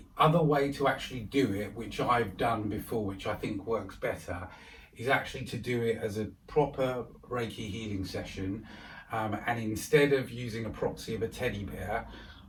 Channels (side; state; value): both; identical; correlation 1.00